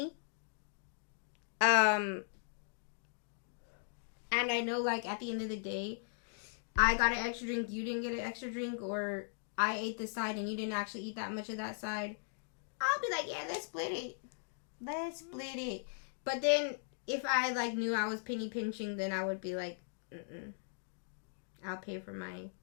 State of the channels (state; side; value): silent; right; digital silence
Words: and I know like at the end of the day, I got an extra drink, you didn't get an extra drink, or I ate this side and you didn't actually eat that much of that side, I'll be like, yeah, let's split it. But then if I like knew I was penny pinching, then I would be like, I'll pay for my